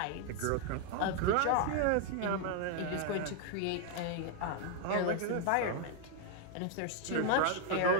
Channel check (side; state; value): both; different; correlation 0.00